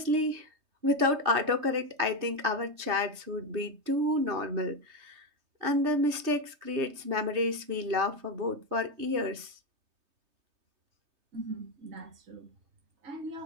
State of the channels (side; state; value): left; late; 3.3 ms